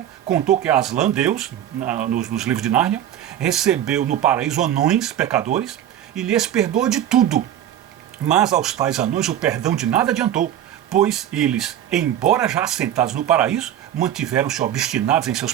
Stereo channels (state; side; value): quieter; left; 11.1 dB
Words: contou que Aslan, Deus, nos livros de Nárnia, recebeu no paraíso anões pecadores e lhes perdoou de tudo. Mas aos tais anões o perdão de nada adiantou, pois eles, embora já assentados no paraíso, mantiveram-se obstinados em seus